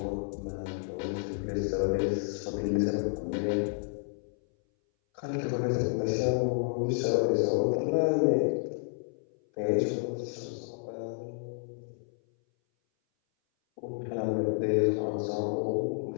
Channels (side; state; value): right; silent; 57 dB below the other